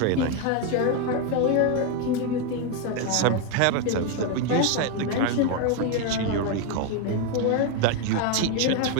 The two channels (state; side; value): different; both; correlation 0.01